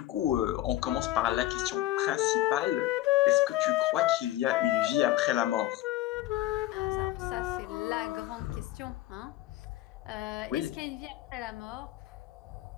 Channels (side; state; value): right; quieter; 15.4 dB